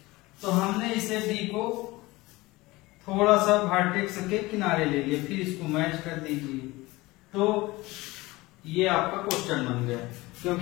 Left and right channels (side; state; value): right; quieter; 20.8 dB